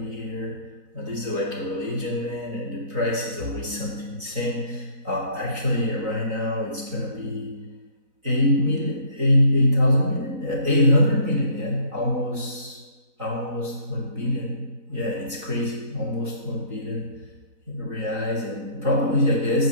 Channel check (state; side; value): late; left; 3.9 ms